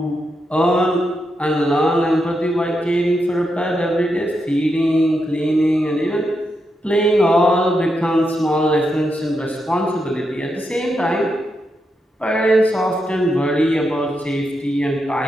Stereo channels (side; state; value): both; normal; correlation 0.84